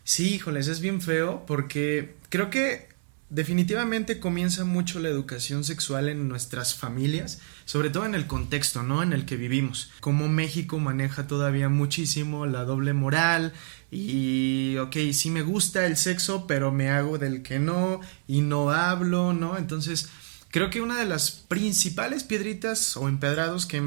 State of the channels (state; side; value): silent; left; 57 dB below the other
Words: Sí, híjoles, es bien feo porque creo que definitivamente comienza mucho la educación sexual en nuestras familias, sobre todo en el contexto, ¿no? En el que vivimos. Como México maneja todavía muchísimo la doble moral y, ok, sí me gusta el sexo, pero me hago del que no y no hablo, ¿no? Entonces, creo que una de las principales piedritas o empedrados que